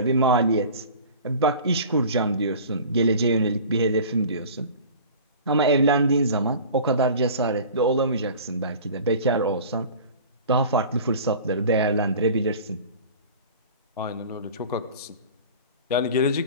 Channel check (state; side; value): inverted; both; correlation -0.41